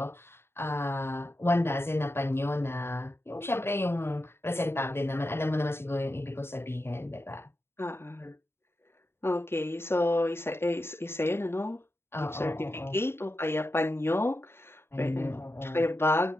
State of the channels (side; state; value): right; late; 0.12 ms